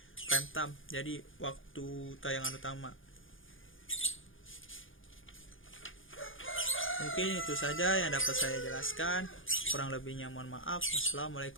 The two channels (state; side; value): late; right; 0.58 ms